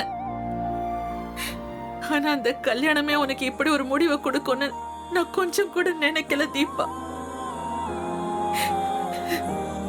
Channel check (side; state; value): both; identical; correlation 1.00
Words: ஆனா அந்த கல்யாணமே உனக்கு இப்படி ஒரு முடிவை கொடுக்கும்னு நான் கொஞ்சம் கூட நினைக்கல தீபா.